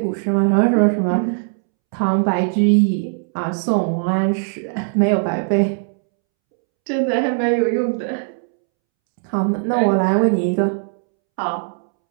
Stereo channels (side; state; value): left; silent; 66 dB below the other